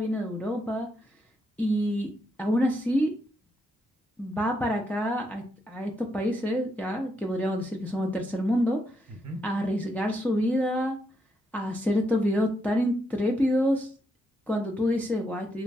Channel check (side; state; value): both; normal; correlation 0.80